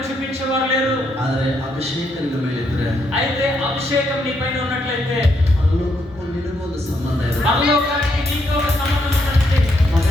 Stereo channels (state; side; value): normal; both; correlation 0.76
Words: చూపించేవారు లేరు. ಆದರೆ ಅಭಿಷೇಕ ನಿನ್ನ ಮೇಲೆ ಇದ್ರೆ అయితే అభిషేకం నీ పైన ఉన్నట్లయితే ಪರಲೋಕಕ್ಕೂ ನಿನಗೂ ಒಂದು ಸಂಬಂಧ ಇದೆ. పరలోకానికి నీకు ఒక సంబంధం ఉందండి.